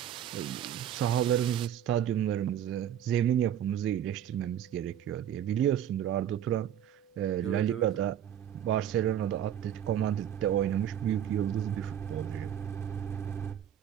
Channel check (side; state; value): left; quieter; 10.3 dB